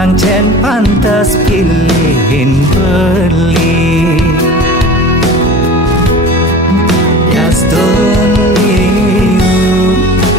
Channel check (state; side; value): normal; both; correlation 0.37